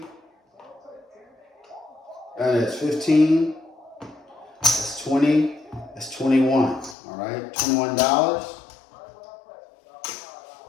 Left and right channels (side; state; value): right; drops out; at 7.0 s